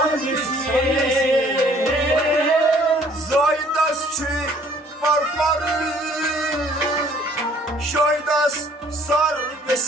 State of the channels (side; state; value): both; normal; correlation 0.59